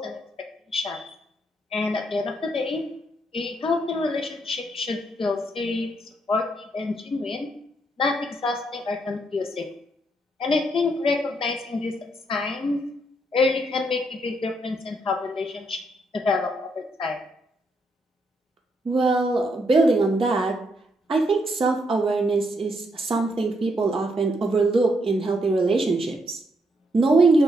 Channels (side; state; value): both; normal; correlation 0.76